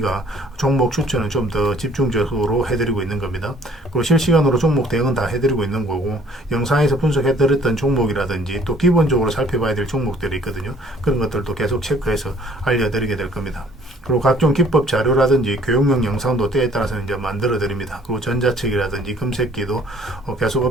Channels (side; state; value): both; normal; correlation 0.57